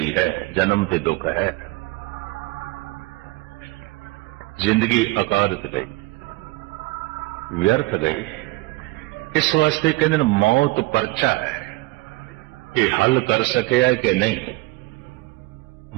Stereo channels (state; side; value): quieter; left; 21.0 dB